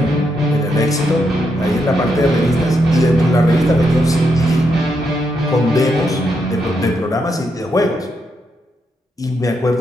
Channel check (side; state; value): both; normal; correlation 0.80